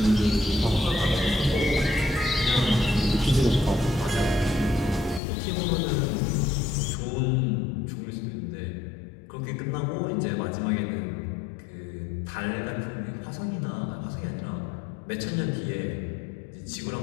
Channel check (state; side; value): drops out; right; at 5.2 s